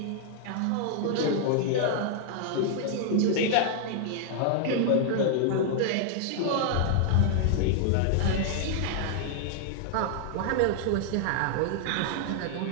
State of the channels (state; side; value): different; both; correlation 0.00